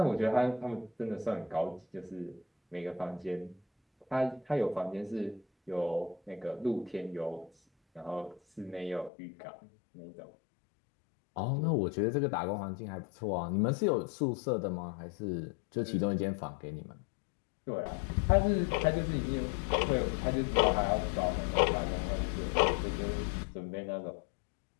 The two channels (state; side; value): drops out; right; at 9.1 s